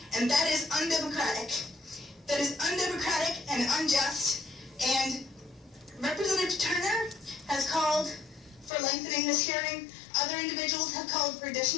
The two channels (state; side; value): drops out; right; at 8.7 s